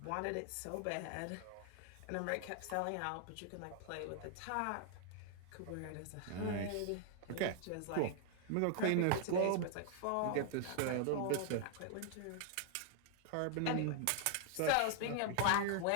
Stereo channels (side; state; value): both; different; correlation 0.00